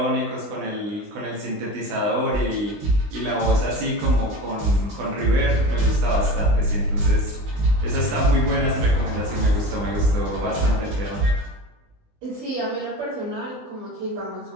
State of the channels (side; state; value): left; late; 20 ms